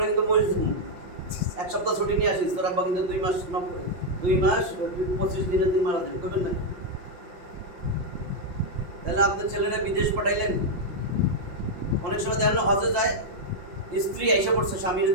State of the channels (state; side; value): late; left; 5.7 ms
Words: কিন্তু মরে যাবো, 1 সপ্তাহ ছুটি নিয়ে আসিস, তোর আব্বা কিন্তু 2 মাস 25 দিনে তুই মারা যাবে, করবেন না? তাহলে আপনার ছেলেরা বিদেশ পাঠাইলেন। অনেক সময় দেখেন হজে যায়, স্ত্রী এসে পড়ছে স্বামীর